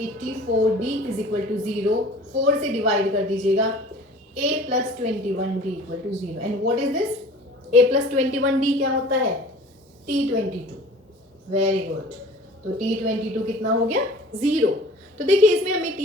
is equal to 0। 4 से डिवाइड कर दीजिएगा, A plus 21D equal to 0। And what is this? A plus 21D क्या होता है? T22। वेरी गुड, तो T22 कितना हो गया? 0। तो देखिए इसमें हमें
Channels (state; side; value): normal; both; correlation 0.45